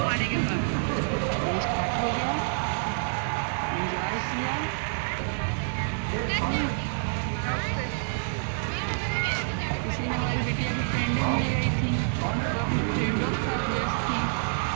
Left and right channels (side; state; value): left; silent; digital silence